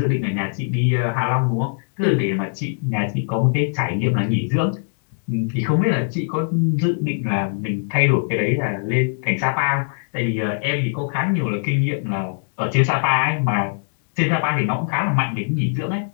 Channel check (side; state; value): right; silent; digital silence